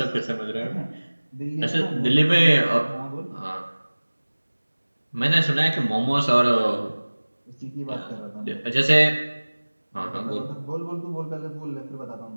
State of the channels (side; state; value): both; inverted; correlation -1.00